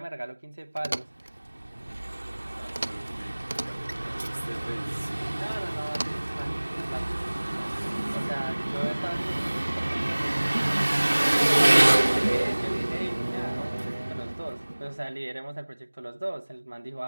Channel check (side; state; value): both; inverted; correlation -1.00